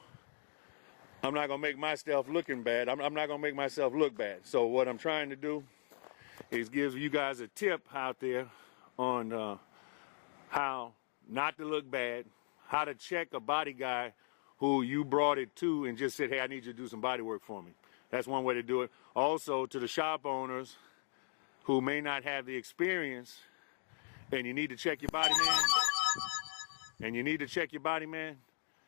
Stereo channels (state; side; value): silent; right; 52 dB below the other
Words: I'm not gonna make myself looking bad. I'm not gonna make myself look bad. So what I'm trying to do is give you guys a tip out there on how not to look bad, how to check a body guy who you brought it to and just said, hey, I need you to do some body work for me. That's one way to do it. Also, to the shop owners who may not have the experience, and you need to check your body, man,